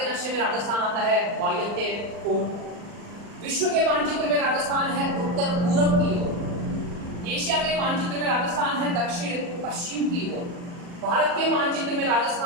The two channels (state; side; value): late; left; 40 ms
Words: नक्शे में राजस्थान आता है वायव्य कोण। विश्व के मानचित्र में राजस्थान है उत्तर पूर्व की ओर, एशिया के मानचित्र में राजस्थान है दक्षिण पश्चिम की ओर, भारत के मानचित्र में